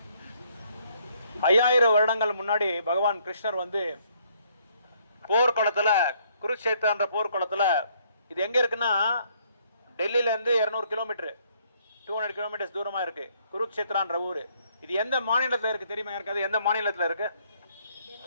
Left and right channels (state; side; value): inverted; both; correlation -0.67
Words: ஐயாயிரம் வருடங்கள் முன்னாடி பகவான் கிருஷ்ணர் வந்து போர்க்குளத்தில் குருக்ஷேத்திரன்ற போர்க்குளத்தில், இது எங்கே இருக்குன்னா டெல்லியிலேருந்து 200 கிலோமீட்டர் 200 கிலோமீட்டர்ஸ் தூரமாக இருக்குது குருக்ஷேத்திரான்ற ஊர். இது எந்த மாநிலத்தில் இருக்குது தெரியுமா? இருக்காது. எந்த மாநிலத்தில் இருக்குது?